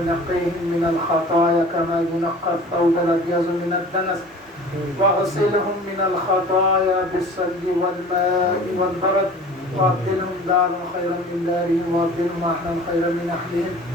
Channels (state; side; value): normal; both; correlation 0.43